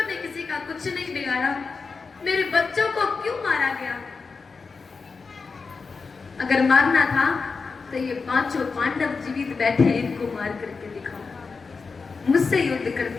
ने किसी का कुछ नहीं बिगाड़ा, मेरे बच्चों को क्यों मारा गया? अगर मारना था तो ये पांचों पांडव जीवित बैठे, इनको मार करके दिखाओ, मुझसे युद्ध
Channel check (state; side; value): quieter; right; 4.7 dB